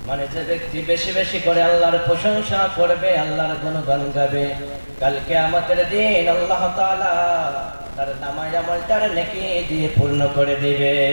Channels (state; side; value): inverted; both; correlation -1.00